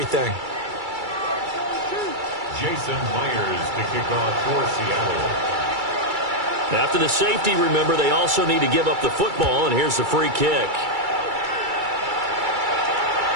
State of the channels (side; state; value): left; late; 2.3 ms